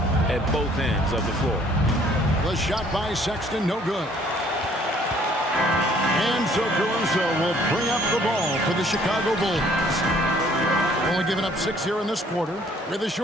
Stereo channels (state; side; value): normal; both; correlation 0.60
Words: at both ends of the floor. The shot by Sexton, no good. And so Caruso will bring up the ball for the Chicago Bulls. Only giving up 6 here in this quarter. With a